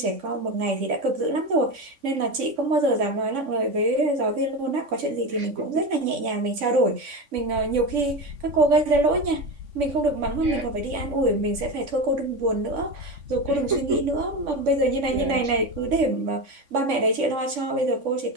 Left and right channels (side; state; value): left; late; 3.5 ms